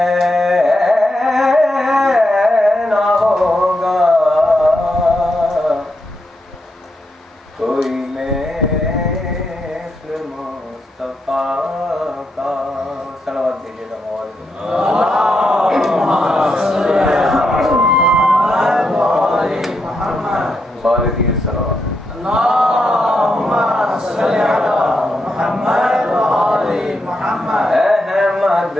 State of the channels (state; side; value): normal; both; correlation 0.83